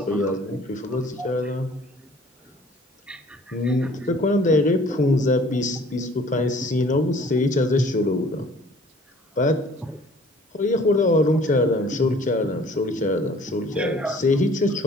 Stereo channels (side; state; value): both; normal; correlation 0.53